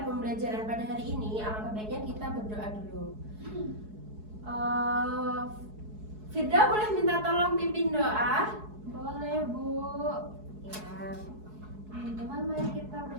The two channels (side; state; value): left; late; 4.7 ms